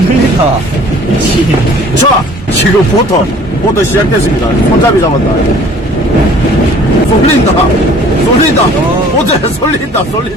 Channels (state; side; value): normal; both; correlation 0.52